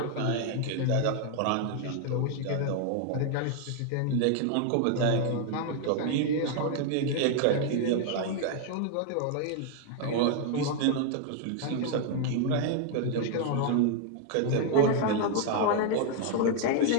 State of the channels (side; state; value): both; different; correlation 0.00